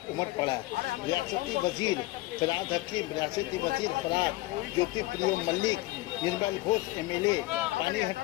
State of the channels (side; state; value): right; quieter; 19.1 dB